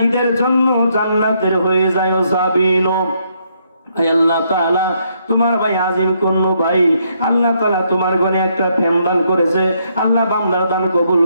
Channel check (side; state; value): both; inverted; correlation -0.73